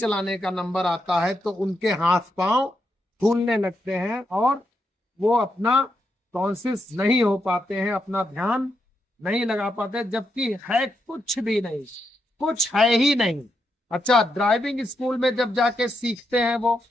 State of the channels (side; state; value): both; normal; correlation 0.82